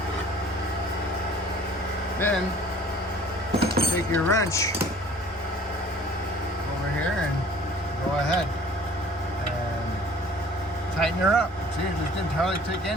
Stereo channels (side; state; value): both; normal; correlation 0.51